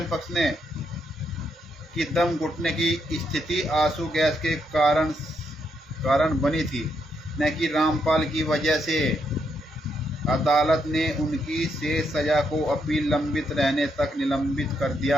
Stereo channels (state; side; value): normal; both; correlation 0.78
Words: पक्ष ने कि दम घुटने की स्थिति आंसू गैस के कारण बनी थी, न कि रामपाल की वजह से। अदालत ने उनकी शेष सजा को अपील लंबित रहने तक निलंबित कर दिया।